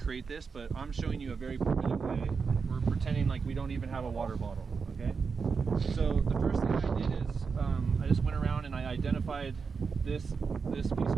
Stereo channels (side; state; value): left; quieter; 5.3 dB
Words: this, but I'm showing you a very primitive way. We're pretending like we don't even have a water bottle, okay? So the first thing I did is I just went around and I identified this piece